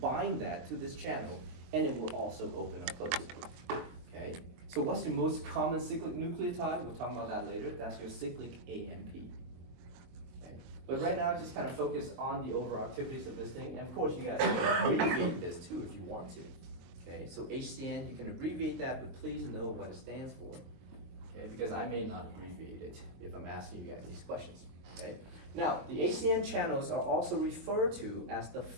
that to this channel and it will also open or close. Okay? So what's the most common cyclic nucleotide? We'll talk about that later. That's your cyclic AMP. Okay? But right now, just kind of focus on the overall activities of this thing. And of course, you guys can abbreviate this too if you want to. Okay? So HCN, you can abbreviate that, but please know what it stands for. Okay? Because I may not abbreviate it if I'm asking you guys these questions. Okay? Now, the HCN channels are also referred to as the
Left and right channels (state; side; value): late; left; 22 ms